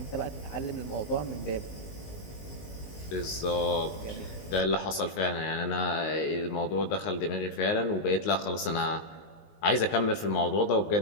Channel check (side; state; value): right; late; 19 ms